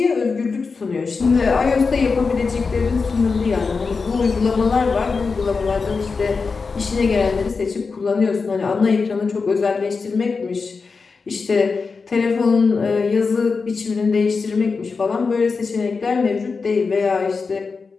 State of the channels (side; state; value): right; quieter; 4.7 dB